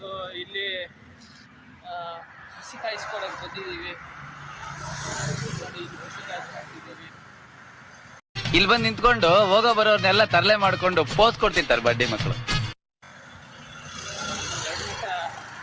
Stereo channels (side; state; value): both; identical; correlation 1.00